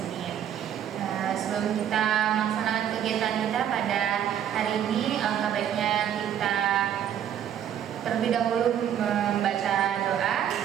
Sebelum kita melaksanakan kegiatan kita pada hari ini, alangkah baiknya kita terlebih dahulu membaca doa.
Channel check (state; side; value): quieter; left; 9.8 dB